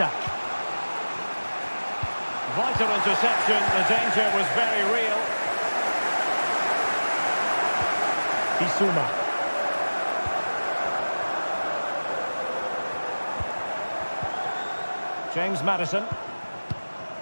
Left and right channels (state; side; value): inverted; both; correlation -1.00